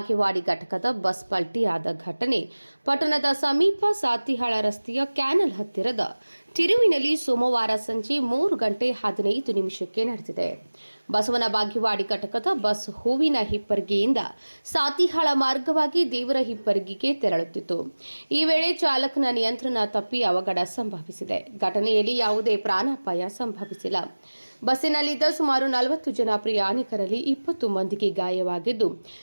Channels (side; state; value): both; inverted; correlation -1.00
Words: ಘಟಕದ ಬಸ್ ಪಲ್ಟಿಯಾದ ಘಟನೆ ಪಟ್ಟಣದ ಸಮೀಪ ಸಾತಿಹಾಳ ರಸ್ತೆಯ ಕ್ಯಾನಲ್ ಹತ್ತಿರದ ತಿರುವಿನಲ್ಲಿ ಸೋಮವಾರ ಸಂಜೆ 3:15 ನಡೆದಿದೆ. ಬಸವನ ಬಾಗೇವಾಡಿ ಘಟಕದ ಬಸ್ ಹೂವಿನ ಹಿಪ್ಪರಗಿಯಿಂದ ಸಾತಿಹಾಳ ಮಾರ್ಗವಾಗಿ ದೇವರ ಹಿಪ್ಪರಗಿಗೆ ತೆರಳುತ್ತಿತ್ತು. ಈ ವೇಳೆ ಚಾಲಕನ ನಿಯಂತ್ರಣ ತಪ್ಪಿ ಅವಘಡ ಸಂಭವಿಸಿದೆ. ಘಟನೆಯಲ್ಲಿ ಯಾವುದೇ ಪ್ರಾಣಾಪಾಯ ಸಂಭವಿಸಿಲ್ಲ. ಬಸ್ಸಿನಲ್ಲಿದ್ದ ಸುಮಾರು 40 ಜನ ಪ್ರಯಾಣಿಕರಲ್ಲಿ 20 ಮಂದಿಗೆ ಗಾಯವಾಗಿದ್ದು,